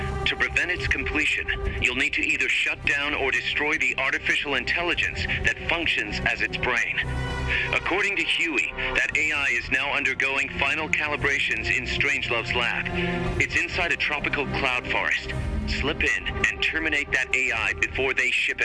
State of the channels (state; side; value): identical; both; correlation 1.00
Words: To prevent its completion, you'll need to either shut down or destroy the artificial intelligence that functions as its brain. According to Huey, that AI is now undergoing final calibrations in Strangelove's lab. It's inside a tropical cloud forest. Slip in and terminate that AI before they ship